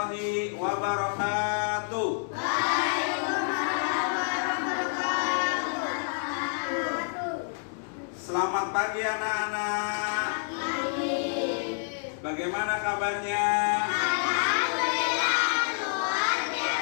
wabarakatuh. Selamat pagi anak-anak. Bagaimana kabarnya?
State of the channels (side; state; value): right; silent; digital silence